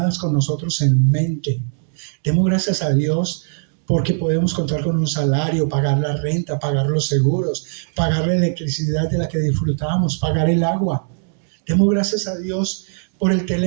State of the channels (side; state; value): left; silent; digital silence